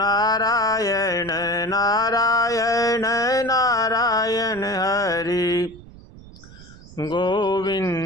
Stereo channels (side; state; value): right; noise; rumble, 19 dB below the sound